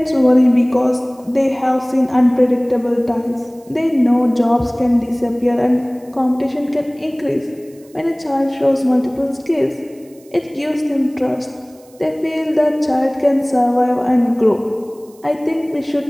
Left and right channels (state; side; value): noise; right; hiss, 29 dB below the sound